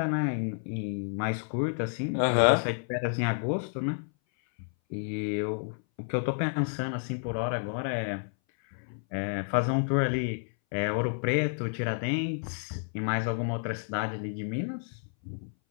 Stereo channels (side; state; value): right; silent; 58 dB below the other